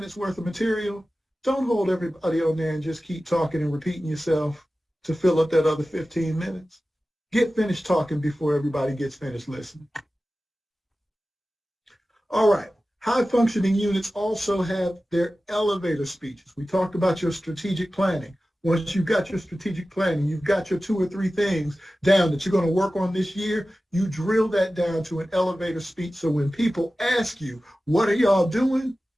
worth of material, don't hold everybody on there and just keep talking and repeating yourself to fill up that other 15 minutes. Get finished talking before everybody gets finished listening. All right. High functioning units also have their elevator speeches. We talked about your strategic planning. Once you've got your strategic planning, you've got your 2 or 3 things down that you're going to work on this year, you drill that down to an elevator speech. So when people ask you, what are y'all doing?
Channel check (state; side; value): normal; both; correlation 0.95